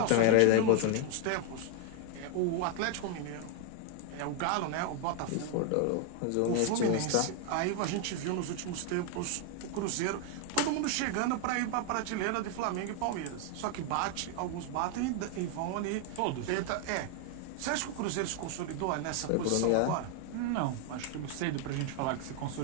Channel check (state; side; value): different; both; correlation 0.00